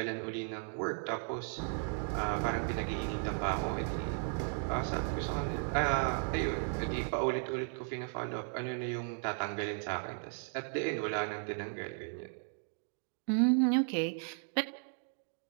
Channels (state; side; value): silent; left; 54 dB below the other